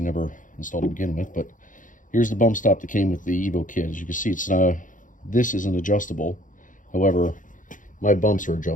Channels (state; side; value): late; right; 0.38 ms